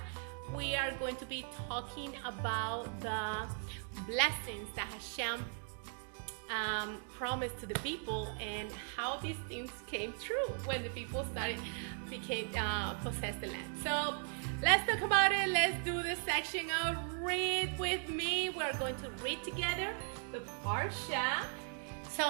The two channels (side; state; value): left; silent; 52 dB below the other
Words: we are going to be talking about the blessings that Hashem promised to the people and how these things came true when the people possessed the land. So let's talk about it. Let's do the section of read with me. We're going to read together the Parsha.